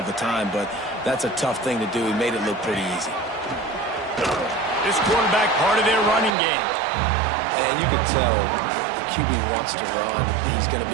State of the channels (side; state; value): left; drops out; at 6.3 s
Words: the time, but that's a tough thing to do. He made it look pretty easy. This quarterback part of their running game. And you can tell the QB wants to run. He's going to